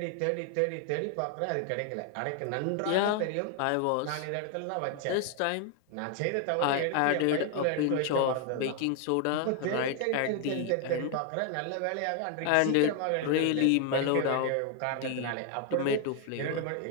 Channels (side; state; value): both; different; correlation 0.00